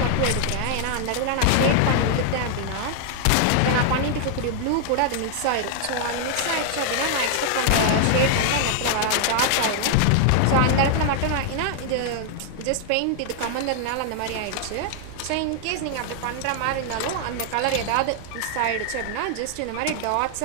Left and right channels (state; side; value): different; both; correlation 0.00